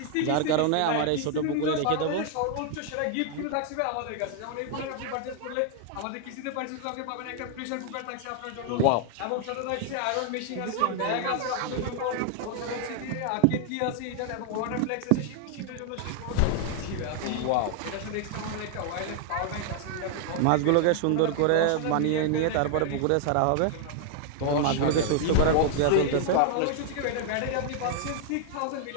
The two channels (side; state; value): both; different; correlation 0.00